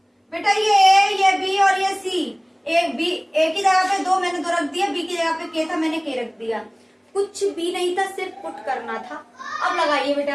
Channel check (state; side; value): identical; both; correlation 1.00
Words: बेटा ये a, ये b और ये c। a की जगह पे 2 मैंने 2 रख दिया, b की जगह पे k था, मैंने k रख दिया। कुछ भी नहीं था, सिर्फ पुट करना था। अब लगाइए